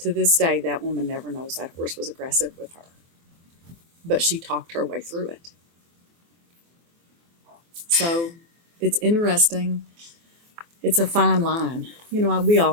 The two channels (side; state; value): left; late; 24 ms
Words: this day, that woman never knows that horse was aggressive with her. But she talked her way through it. So it's interesting. It's a fine line. You know, we